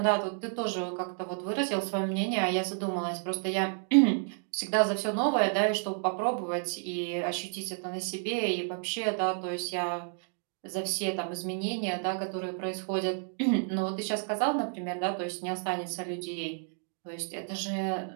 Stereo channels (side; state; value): left; silent; 57 dB below the other